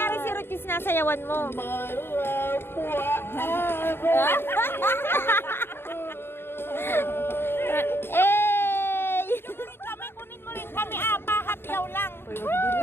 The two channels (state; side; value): late; right; 0.11 ms